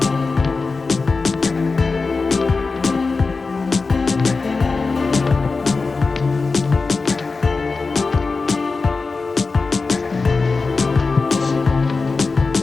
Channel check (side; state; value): right; quieter; 4.1 dB